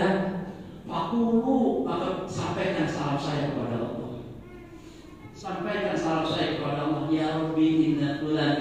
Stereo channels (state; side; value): identical; both; correlation 1.00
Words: fakulu, maka sampaikan salam saya kepada Allah. Sampaikan salam saya kepada Allah. Ya Rabbi inna